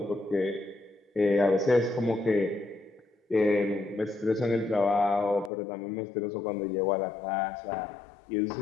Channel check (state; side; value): drops out; right; at 5.5 s